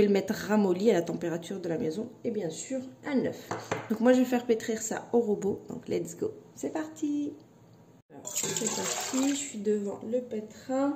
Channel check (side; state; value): both; identical; correlation 1.00